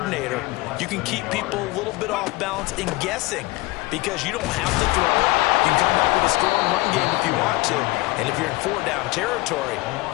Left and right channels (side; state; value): right; quieter; 21.2 dB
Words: you can keep people a little bit off balance and guessing because you don't have to throw it. You can come back with a strong run game if you want to. And if you're in 4-down territory,